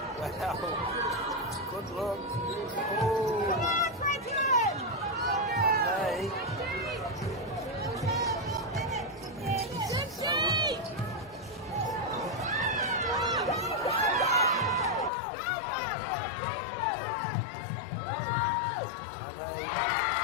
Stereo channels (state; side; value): drops out; right; at 15.1 s